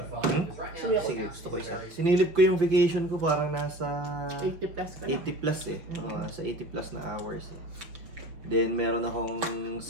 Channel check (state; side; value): late; left; 5.8 ms